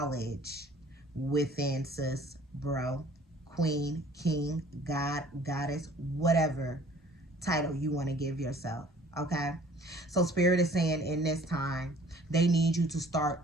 within, sis, bro, queen, king, god, goddess, whatever title you want to give yourself. Okay, so Spirit is saying in this time they need you to start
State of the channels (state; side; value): normal; both; correlation 0.53